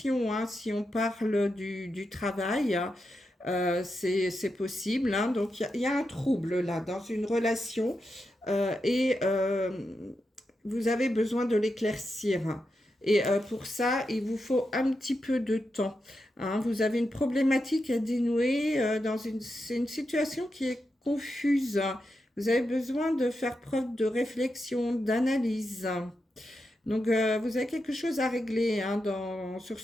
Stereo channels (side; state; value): both; normal; correlation 0.87